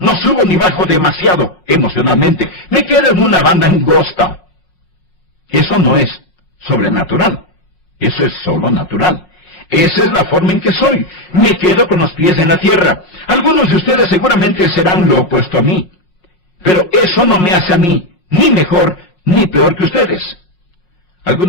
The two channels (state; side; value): late; right; 5.5 ms